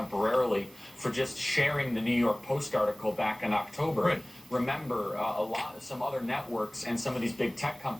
for just sharing the New York Post article back in October. Right. Remember, some other networks and some of these big tech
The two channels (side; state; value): right; noise; hiss, 25 dB below the sound